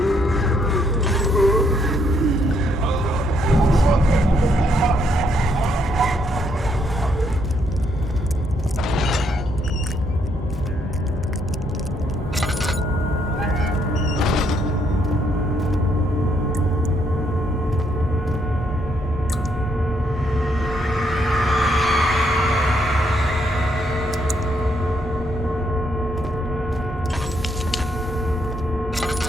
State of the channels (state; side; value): normal; both; correlation 0.73